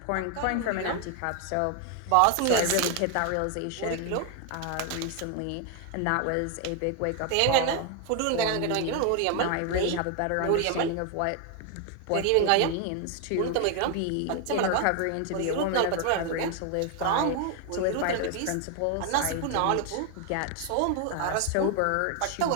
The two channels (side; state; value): both; different; correlation 0.01